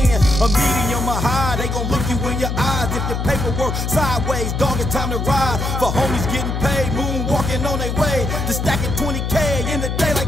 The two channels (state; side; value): noise; left; hum, 2 dB below the sound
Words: in? A medium or high, they gon' look you in your eyes. If your paperwork sideways, dog, it's time to ride. For homies getting paid, moonwalking on their way to stacking 20K in the day